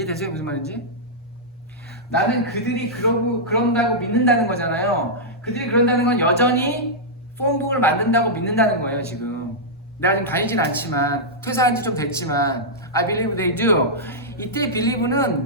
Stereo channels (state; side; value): normal; both; correlation -0.10